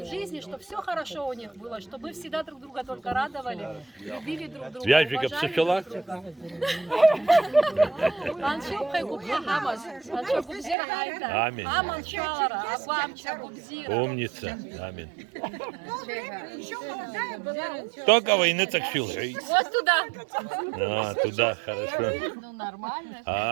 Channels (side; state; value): left; drops out; at 10.8 s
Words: жизни, чтобы все хорошо у них было, чтобы вы всегда друг друга только радовали, любили друг друга. Вяжика психила? Аминь. Умница. Аминь. Только войны так сил. Вот туда. Туда, хорошо. Ну, нормально.